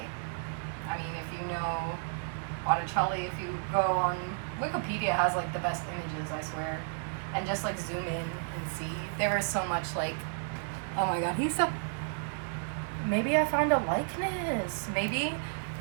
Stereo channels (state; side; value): silent; left; digital silence